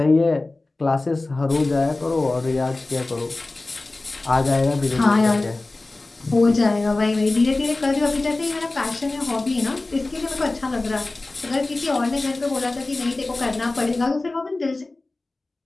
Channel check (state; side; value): quieter; right; 3.1 dB